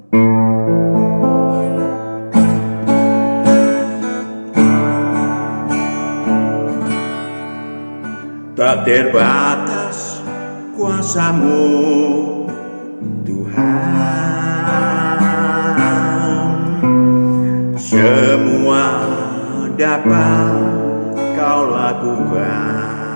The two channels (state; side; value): inverted; both; correlation -1.00